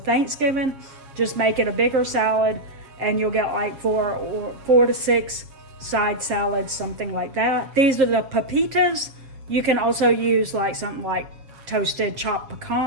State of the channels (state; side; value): late; left; 7.2 ms